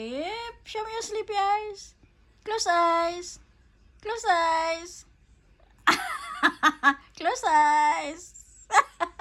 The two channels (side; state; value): both; identical; correlation 1.00